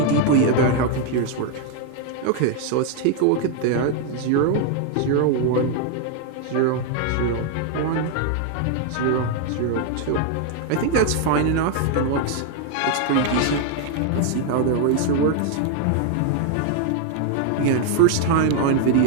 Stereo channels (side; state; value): both; different; correlation 0.00